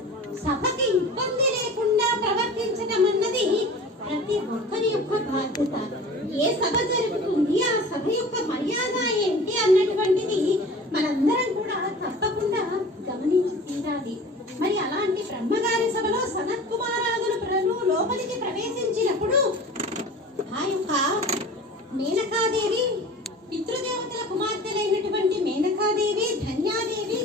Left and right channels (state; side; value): normal; both; correlation 0.40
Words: సభకి ఇబ్బంది లేకుండా ప్రవర్తించడం అన్నది ప్రతి ఒక్కరి యొక్క బాధ్యత. ఏ సభ జరుగుతుంది, ఆ సభ యొక్క మర్యాద ఏంటి అన్నటువంటిది మనందరం కూడా తప్పకుండా గమనించి తీరాలి. మరి అలాంటి బ్రహ్మగారి సభలో సనత్ కుమారాదులు లోపలికి ప్రవేశించినప్పుడు ఆ యొక్క మేనకాదేవి పితృదేవతల కుమార్తెలైనటువంటి మేనకాదేవి, ధన్యాదేవి,